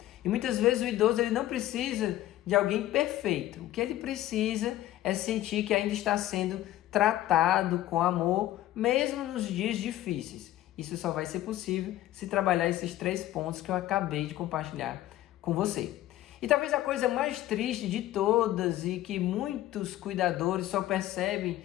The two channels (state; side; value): quieter; right; 14.4 dB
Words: E muitas vezes o idoso ele não precisa de alguém perfeito. O que ele precisa é sentir que ainda está sendo tratado com amor, mesmo nos dias difíceis. Isso só vai ser possível se trabalhar esses 3 pontos que eu acabei de compartilhar com você. E talvez a coisa mais triste de todas e que muitos cuidadores só percebem